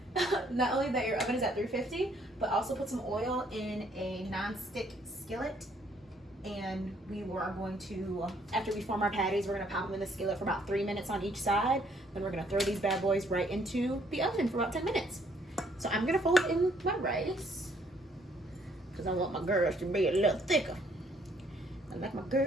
that your oven is at 350, but also put some oil in a non-stick skillet. And we are going to, after we form our patties, we're going to pop them in the skillet for about 3 minutes on each side. Then we're going to throw these bad boys right into the oven for about 10 minutes. So I'm gonna fold in my rice because I want my girls to be a little thicker. I like my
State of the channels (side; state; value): both; normal; correlation 0.66